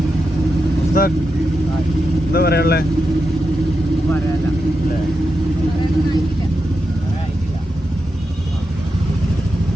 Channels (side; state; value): both; normal; correlation 0.87